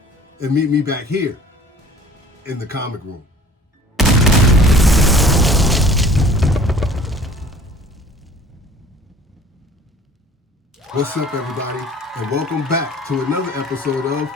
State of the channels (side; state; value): both; normal; correlation 0.49